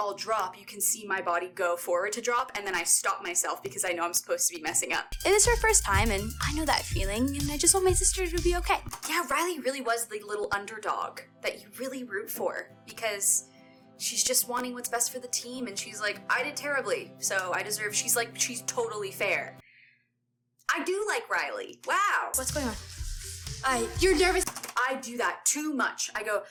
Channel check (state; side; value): identical; both; correlation 1.00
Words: drop, you can see my body go forward to drop, and then I stop myself because I know I'm supposed to be messing up. It is her first time, and I know that feeling, and I just want my sister to be okay. Yeah, Riley really was the little underdog that you really root for because she's just wanting what's best for the team, and she's like, I did terribly, so I deserve. She's totally fair. I do like Riley. Wow. What's going on? You're nervous. I do that too much.